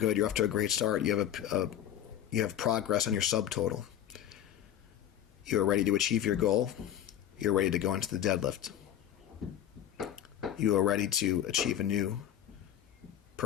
You're off to a great start. You have progress on your subtotal. You are ready to achieve your goal. You're ready to go into the deadlift. You are ready to achieve a new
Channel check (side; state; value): right; quieter; 10.7 dB